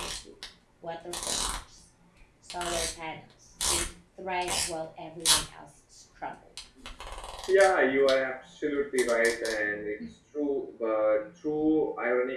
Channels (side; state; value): both; identical; correlation 1.00